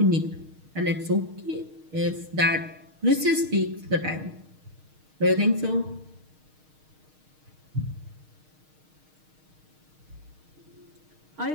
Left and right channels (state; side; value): late; left; 6.5 ms